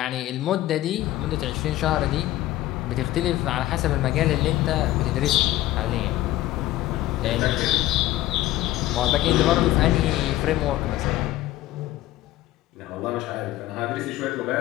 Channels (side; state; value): right; quieter; 15.5 dB